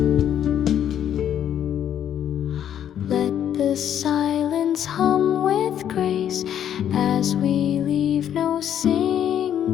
Let the silence hum with grace, as we leave no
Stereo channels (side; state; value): right; quieter; 9.9 dB